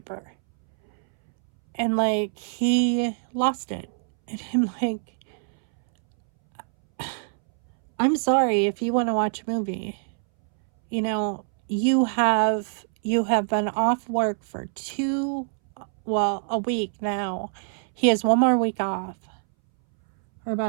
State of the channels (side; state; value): left; silent; 62 dB below the other